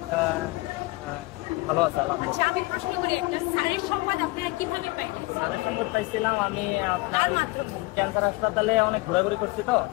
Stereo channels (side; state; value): right; quieter; 22.7 dB